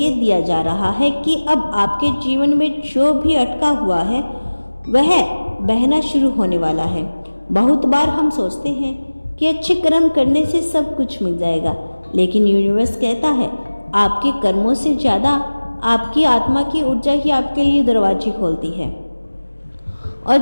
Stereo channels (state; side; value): inverted; both; correlation -1.00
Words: दिया जा रहा है कि अब आपके जीवन में जो भी अटका हुआ है वह बहना शुरू होने वाला है। बहुत बार हम सोचते हैं कि अच्छे कर्म करने से सब कुछ मिल जाएगा, लेकिन यूनिवर्स कहता है आपके कर्मों से ज़्यादा आपकी आत्मा की ऊर्जा ही आपके लिए दरवाजे खोलती है। और